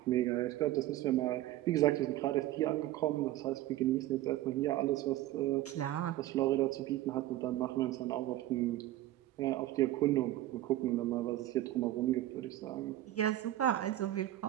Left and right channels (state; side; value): quieter; left; 14.8 dB